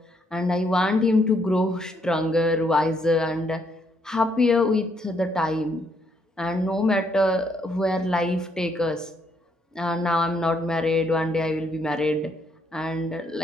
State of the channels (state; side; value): normal; both; correlation 0.73